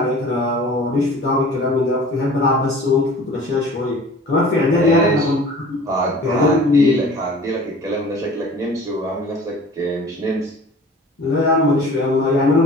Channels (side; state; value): both; normal; correlation 0.45